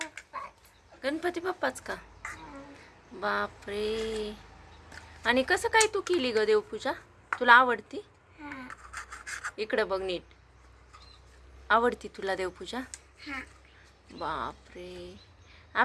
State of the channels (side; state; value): both; identical; correlation 1.00